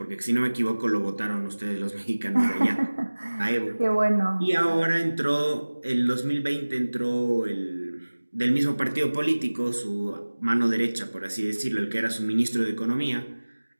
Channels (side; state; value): both; inverted; correlation -1.00